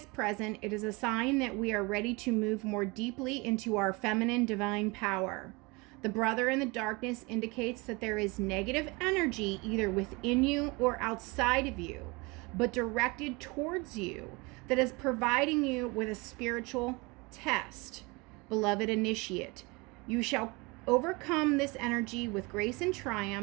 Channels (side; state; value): left; quieter; 26.3 dB